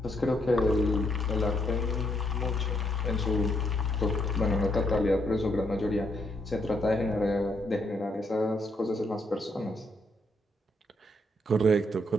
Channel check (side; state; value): both; normal; correlation 0.75